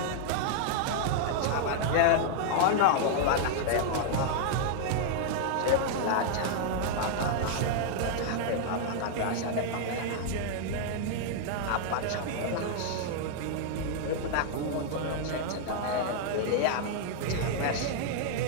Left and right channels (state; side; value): different; both; correlation 0.00